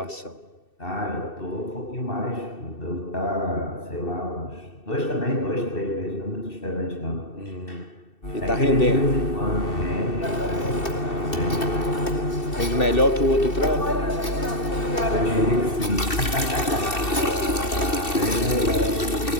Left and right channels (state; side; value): late; right; 2.7 ms